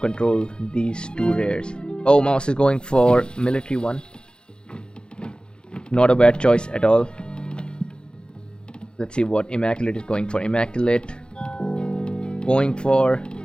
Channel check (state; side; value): late; right; 0.050 ms